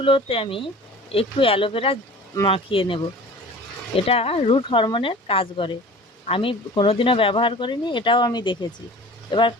আমি একটু অ্যালোভেরা মাখিয়ে নেব, এটা রুট হরমোনের কাজ করে। আমি কোনোদিনও ব্যবহার করিনি, এটাও আমি দেখেছি। এবার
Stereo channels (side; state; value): both; normal; correlation 0.42